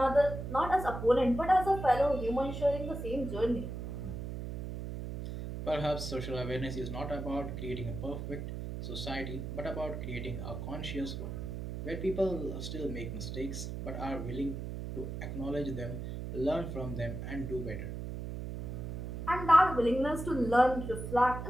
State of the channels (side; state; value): right; noise; hum, 6 dB below the sound